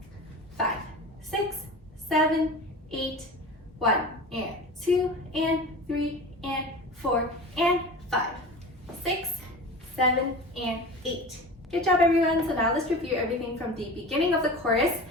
5, 6, 7, 8, 1 and 2 and 3 and 4 and 5, 6, 7 and 8. Good job everyone. So now let's review everything from the beginning of the chorus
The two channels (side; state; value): both; normal; correlation 0.34